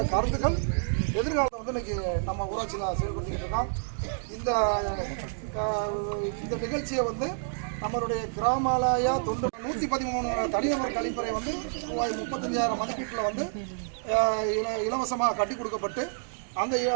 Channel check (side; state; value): left; silent; digital silence